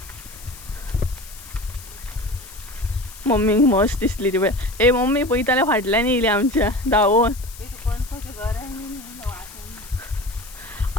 मम्मीक मस्त दिसली ती पळय. ए मम्मी पळयताल्या फाटल्यान येयली आमच्या धांवून.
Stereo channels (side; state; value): left; noise; hiss, 17 dB below the sound